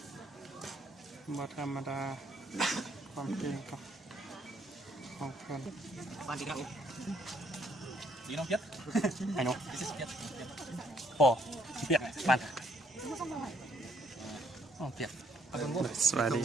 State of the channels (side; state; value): both; normal; correlation 0.68